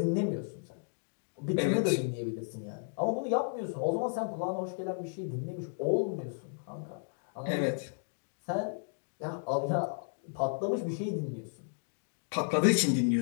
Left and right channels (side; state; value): right; silent; digital silence